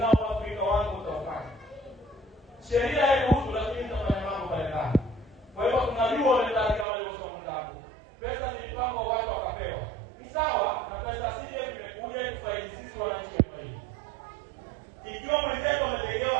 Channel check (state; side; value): drops out; left; at 6.9 s